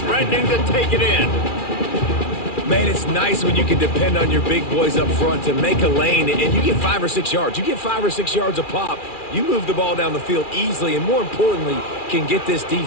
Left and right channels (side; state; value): right; late; 2.4 ms